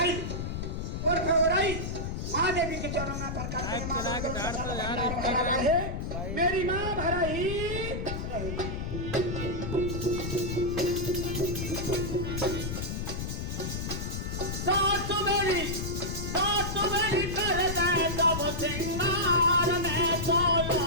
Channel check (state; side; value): noise; left; rumble, 4 dB below the sound